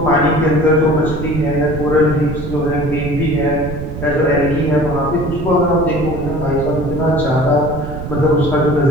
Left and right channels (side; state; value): right; noise; rumble, 7 dB below the sound